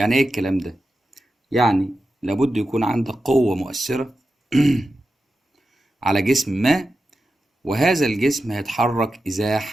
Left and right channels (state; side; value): normal; both; correlation 0.91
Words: ايه الكلام ده؟ يعني لابد يكون عندك قوه مؤثره على جسم ما، وهذا الجسم هيتحرك